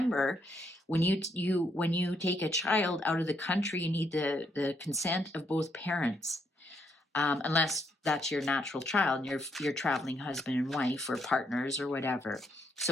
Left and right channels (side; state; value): both; normal; correlation 0.75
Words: when you take a child out of the country, you need the consent of both parents. Unless that's your natural child and you're traveling husband and wife or partners or whatever.